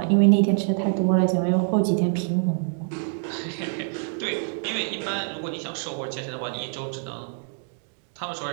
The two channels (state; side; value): silent; left; 61 dB below the other